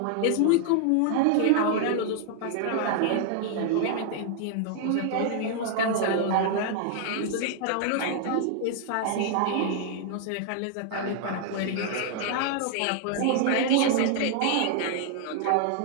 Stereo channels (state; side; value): different; both; correlation 0.00